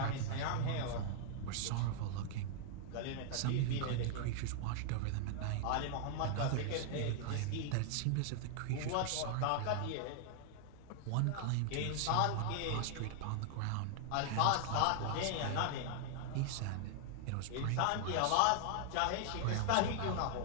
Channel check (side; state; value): both; different; correlation 0.00